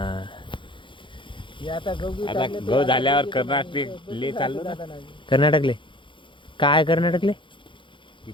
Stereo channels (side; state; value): right; late; 0.24 ms